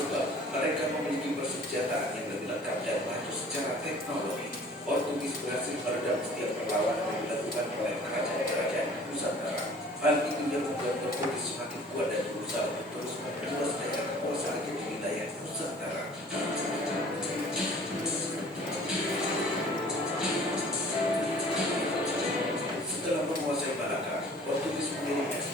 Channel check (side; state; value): both; normal; correlation 0.50